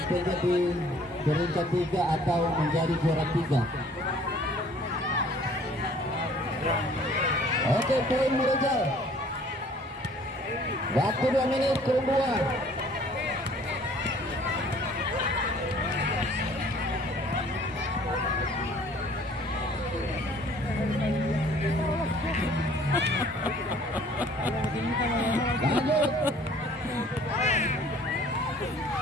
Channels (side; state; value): both; normal; correlation 0.55